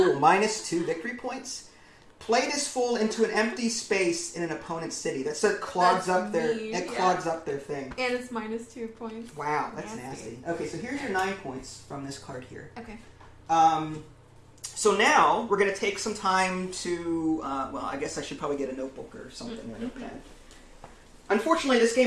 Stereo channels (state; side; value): identical; both; correlation 1.00